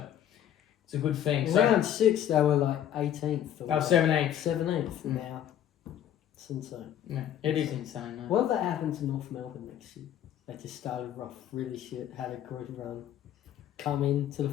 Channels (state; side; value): quieter; right; 10.6 dB